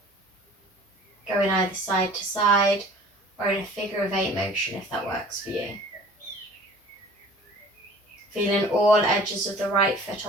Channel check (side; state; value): both; normal; correlation 0.47